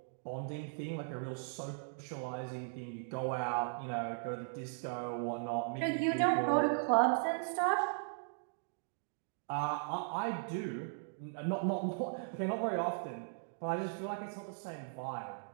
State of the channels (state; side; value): silent; left; digital silence